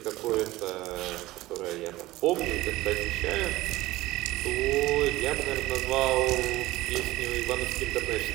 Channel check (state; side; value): quieter; left; 17.9 dB